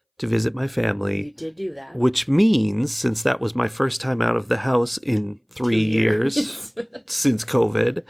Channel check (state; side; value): identical; both; correlation 1.00